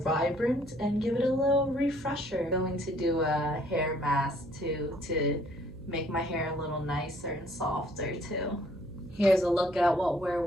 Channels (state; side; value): noise; right; hum, 18 dB below the sound